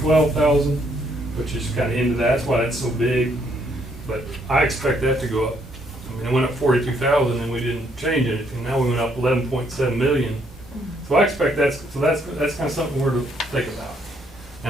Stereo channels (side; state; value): both; normal; correlation 0.70